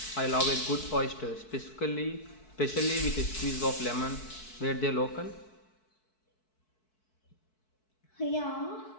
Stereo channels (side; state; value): right; late; 4.6 ms